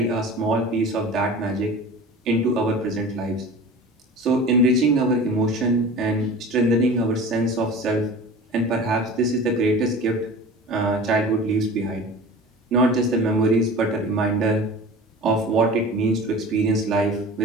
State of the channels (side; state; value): both; normal; correlation 0.38